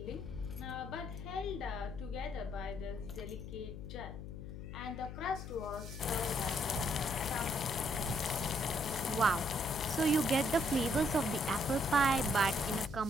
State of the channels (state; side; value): noise; left; hum, 9 dB below the sound